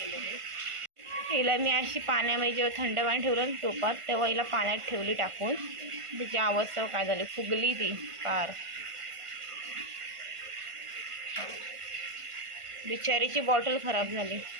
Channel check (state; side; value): late; left; 1.5 ms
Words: ते. हिला मी अशी पाण्यामध्ये जेव्हा थंड पाणी ठेवलं टोपात, तेव्हा हिला पाण्यात ठेवली टाकून. तिची अवस्था काय झाली, फुगली ती कार. बिचारीची बॉटल खराब झाली.